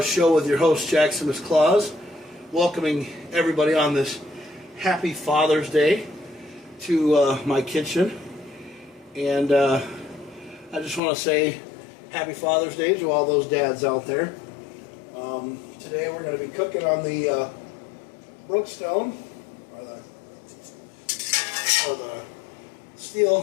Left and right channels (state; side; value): drops out; right; at 11.0 s